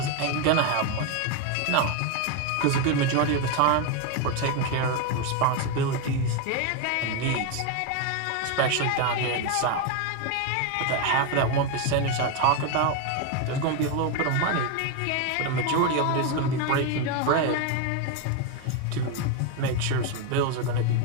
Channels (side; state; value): both; different; correlation 0.02